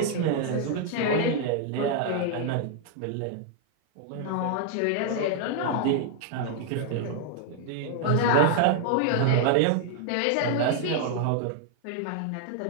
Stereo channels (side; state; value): both; different; correlation 0.00